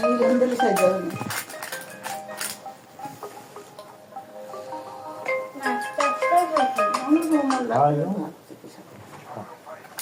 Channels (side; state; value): both; identical; correlation 1.00